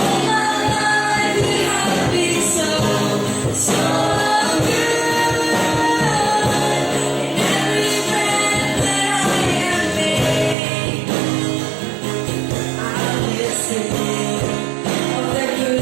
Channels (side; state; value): left; drops out; at 10.6 s